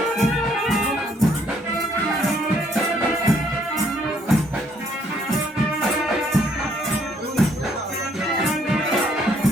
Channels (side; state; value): both; normal; correlation 0.67